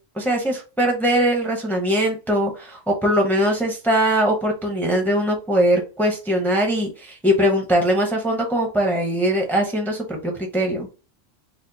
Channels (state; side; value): normal; both; correlation 0.43